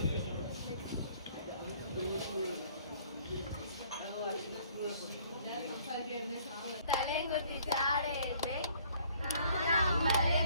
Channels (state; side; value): inverted; both; correlation -0.59